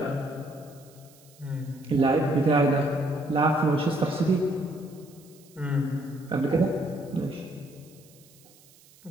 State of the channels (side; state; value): right; noise; hiss, 26 dB below the sound